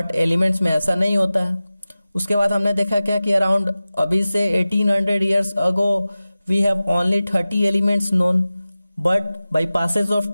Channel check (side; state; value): both; inverted; correlation -0.96